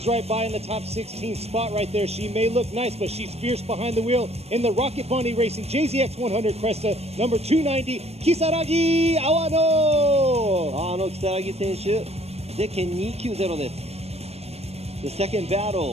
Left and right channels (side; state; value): left; late; 0.30 ms